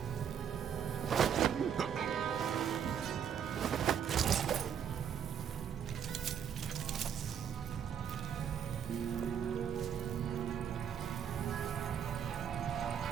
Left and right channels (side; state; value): left; quieter; 8.3 dB